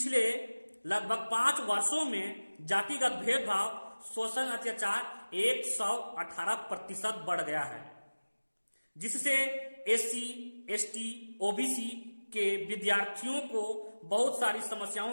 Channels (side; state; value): both; inverted; correlation -1.00